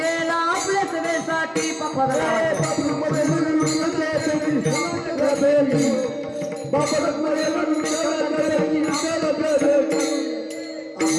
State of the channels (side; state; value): both; identical; correlation 1.00